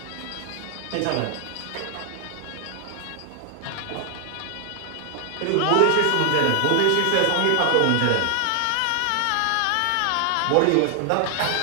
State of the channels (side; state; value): both; different; correlation 0.00